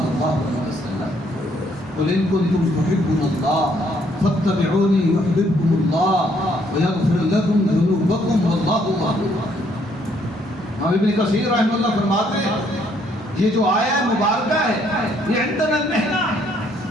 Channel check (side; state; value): both; normal; correlation 0.68